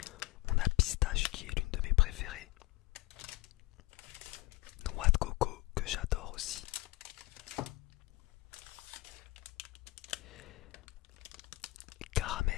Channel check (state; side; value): quieter; right; 20.5 dB